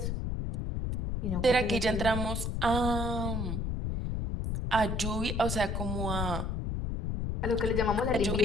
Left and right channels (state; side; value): noise; left; rumble, 1 dB below the sound